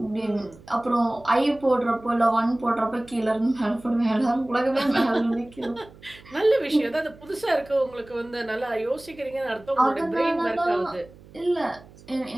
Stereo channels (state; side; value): noise; right; hum, 22 dB below the sound